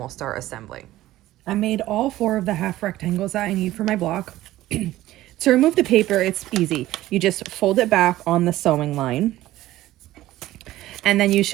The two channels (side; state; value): left; quieter; 15.5 dB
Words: start assembling. I made all 4 of the half rectangles that I need for my block. To remove the paper, it's easy. You just fold it back on the sewing line, and then you